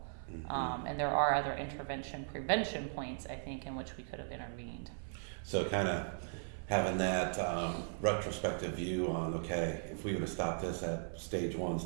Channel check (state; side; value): silent; left; 53 dB below the other